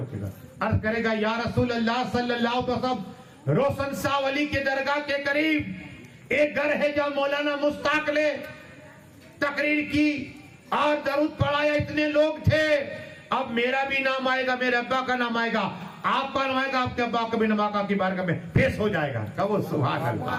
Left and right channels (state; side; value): identical; both; correlation 1.00